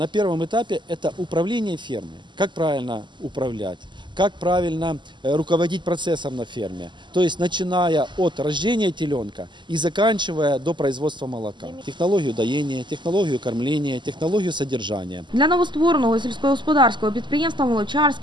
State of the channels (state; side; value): late; left; 0.22 ms